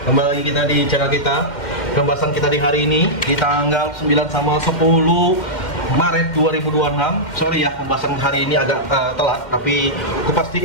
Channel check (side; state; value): right; late; 2.1 ms